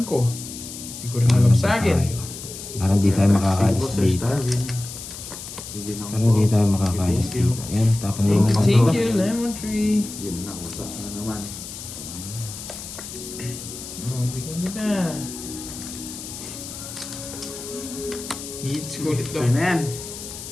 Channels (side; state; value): left; noise; hiss, 11 dB below the sound